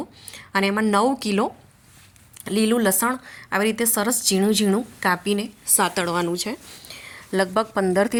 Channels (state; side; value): identical; both; correlation 1.00